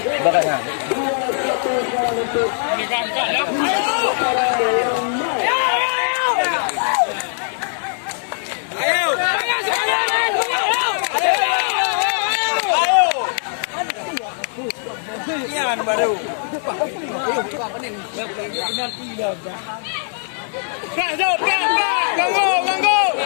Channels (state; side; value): silent; right; digital silence